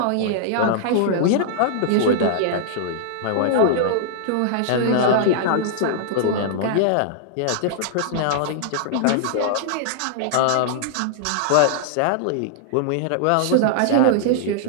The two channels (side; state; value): both; different; correlation -0.01